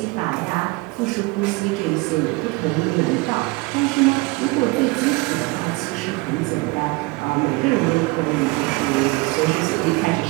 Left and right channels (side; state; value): left; quieter; 24.3 dB